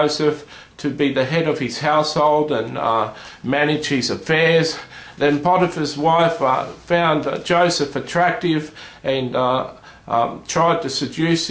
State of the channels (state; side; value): identical; both; correlation 1.00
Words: to be the head of his household and manage his affairs. Then Potiphar's wife found Joseph attractive and tried to seduce